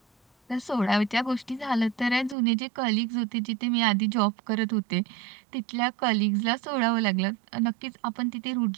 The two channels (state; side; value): drops out; left; at 2.4 s